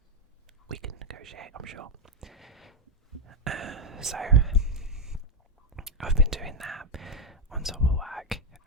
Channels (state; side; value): normal; both; correlation 0.01